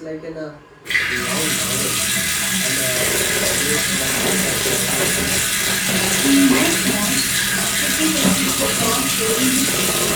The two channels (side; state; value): both; identical; correlation 1.00